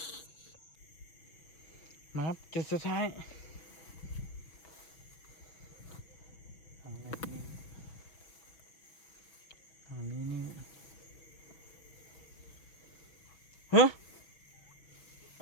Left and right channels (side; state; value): right; late; 6.0 ms